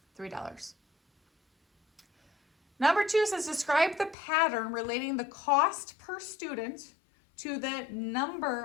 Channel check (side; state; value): right; drops out; at 4.2 s